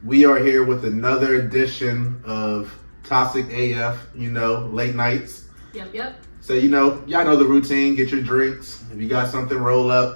We are here with another edition of Toxic AF, late nights. Yep. So, y'all know the routine. Get your drinks. If you got something, roll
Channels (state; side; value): inverted; both; correlation -1.00